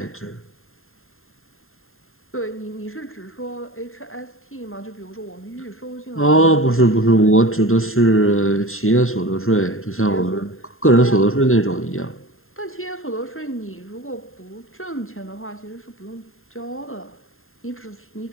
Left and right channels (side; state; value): right; late; 0.61 ms